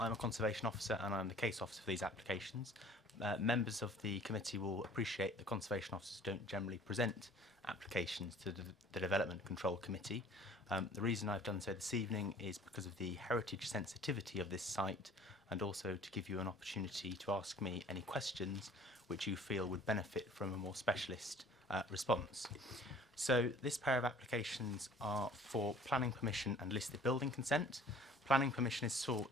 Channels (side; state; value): both; normal; correlation 0.51